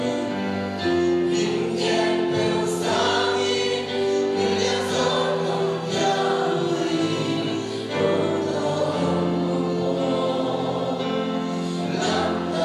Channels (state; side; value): identical; both; correlation 1.00